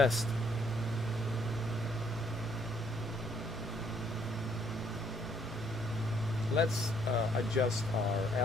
Let's adjust our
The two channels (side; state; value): both; normal; correlation 0.67